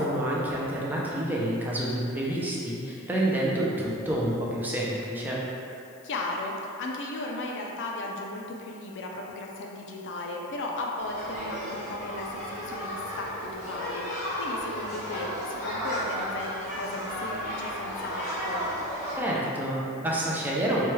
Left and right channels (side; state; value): left; noise; hiss, 25 dB below the sound